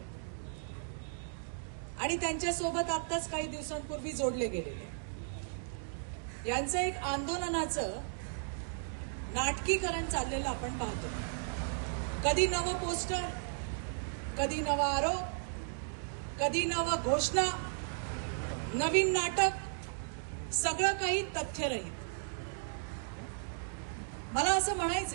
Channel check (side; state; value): left; silent; digital silence